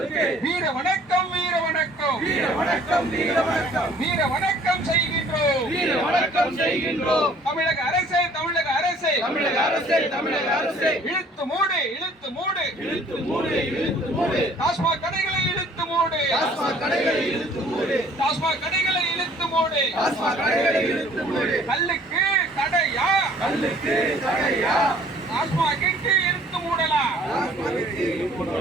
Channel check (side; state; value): both; normal; correlation 0.55